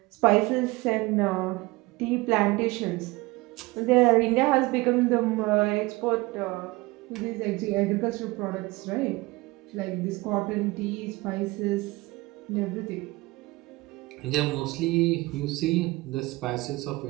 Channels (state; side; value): quieter; left; 22.0 dB